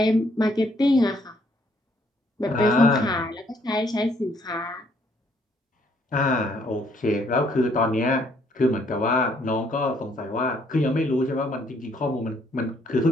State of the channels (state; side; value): normal; both; correlation 0.67